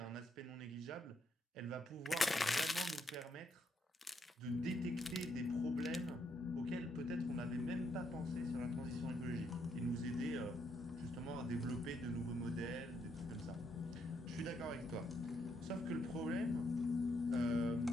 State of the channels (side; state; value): both; normal; correlation 0.76